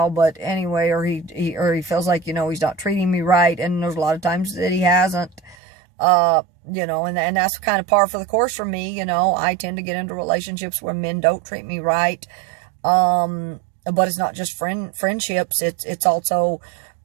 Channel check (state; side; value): drops out; left; at 5.6 s